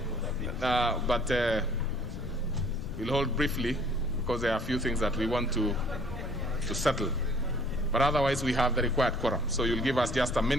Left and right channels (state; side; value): noise; left; rumble, 8 dB below the sound